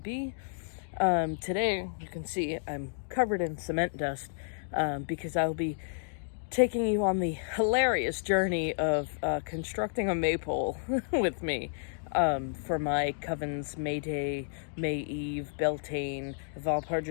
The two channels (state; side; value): silent; right; digital silence